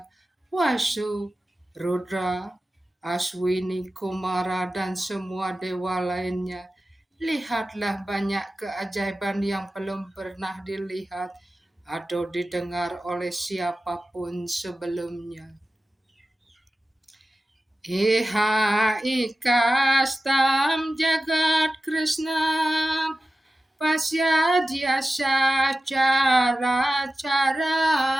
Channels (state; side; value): normal; both; correlation 0.94